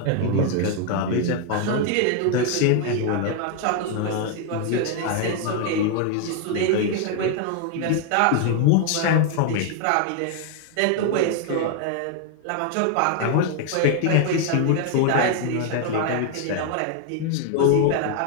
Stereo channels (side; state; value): both; different; correlation 0.00